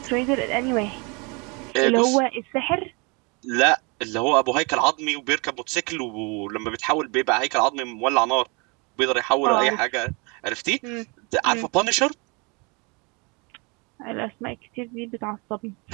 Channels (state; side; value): quieter; left; 30.4 dB